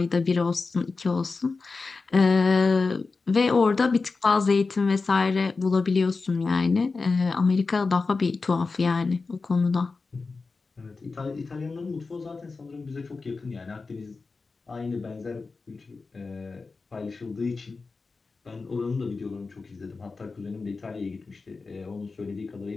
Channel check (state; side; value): quieter; right; 4.1 dB